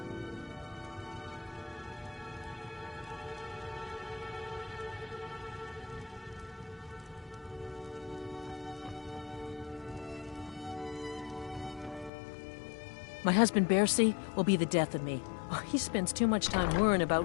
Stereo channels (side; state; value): right; drops out; at 12.1 s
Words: My husband, Bercy, will be the death of me. Oh, he spends too much time worrying about